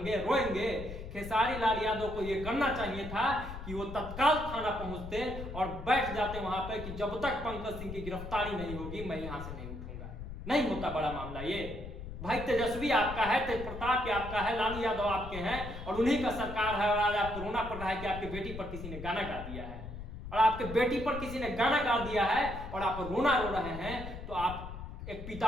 रोएंगे? खेसारी लाल यादव को यह करना चाहिए था कि वो तत्काल थाना पहुंचते और बैठ जाते वहां पर कि जब तक पंकज सिंह की गिरफ्तारी नहीं होगी मैं यहां से नहीं उठूंगा। नहीं होता बड़ा मामला ये। भाई तेजस्वी आपका है, तेज प्रताप आपका है, लालू यादव आपके हैं और उन्हीं का सरकार है। और आज आपको रोना पड़ रहा है कि आपकी बेटी पर किसी ने गाना गा दिया है, और आपके बेटी पर किसी ने गाना गा दिया है और आप रोना रो रहे हैं, तो आप एक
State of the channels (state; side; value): noise; left; rumble, 9 dB below the sound